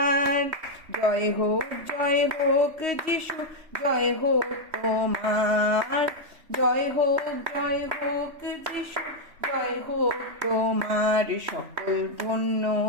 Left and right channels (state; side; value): late; left; 3.1 ms